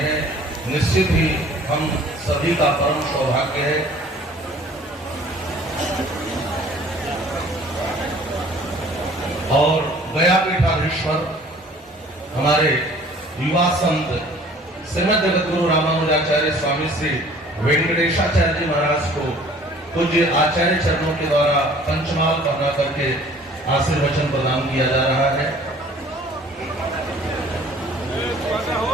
निश्चित ही हम सभी का परम सौभाग्य है। और गया पीठाधीश्वर हमारे युवा संत श्रीमद जगतगुरु रामानुजाचार्य स्वामी श्री वेंकटेशाचार्य जी महाराज को पूज्य आचार्य चरणों के द्वारा पंचमाल पढ़ा करके आशीर्वचन प्रदान किया जा रहा है।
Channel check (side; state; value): both; normal; correlation 0.52